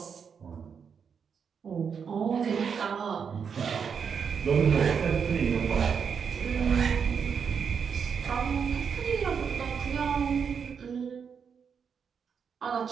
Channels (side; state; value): left; quieter; 6.6 dB